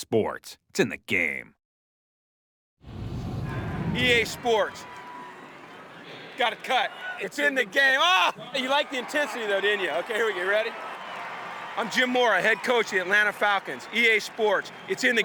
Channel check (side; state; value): both; identical; correlation 1.00